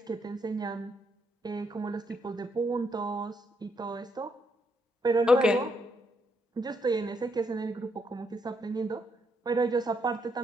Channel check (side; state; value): both; normal; correlation 0.76